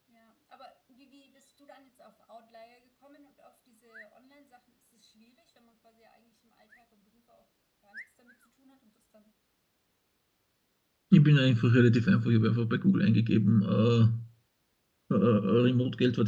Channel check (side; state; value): both; identical; correlation 1.00